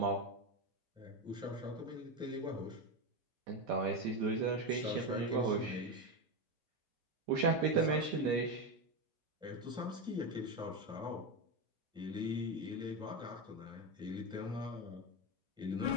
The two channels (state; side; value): normal; both; correlation 0.13